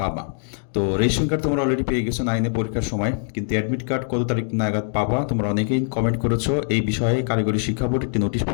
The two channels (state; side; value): silent; right; digital silence